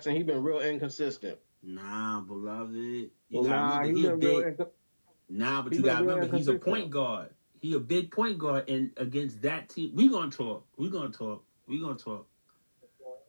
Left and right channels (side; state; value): both; inverted; correlation -1.00